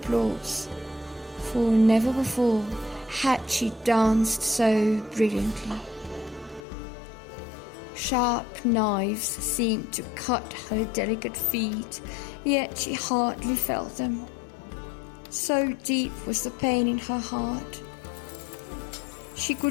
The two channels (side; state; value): right; drops out; at 6.7 s